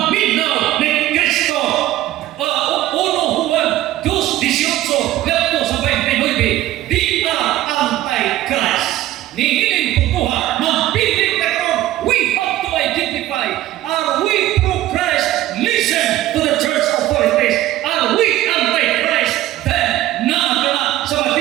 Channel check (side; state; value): left; quieter; 14.7 dB